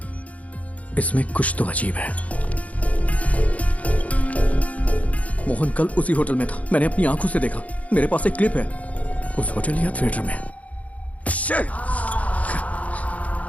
इसमें कुछ तो अजीब है। मोहन कल उसी होटल में था, मैंने अपनी आंखों से देखा। मेरे पास एक क्लिप है उस होटल या थिएटर में।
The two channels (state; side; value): late; right; 0.068 ms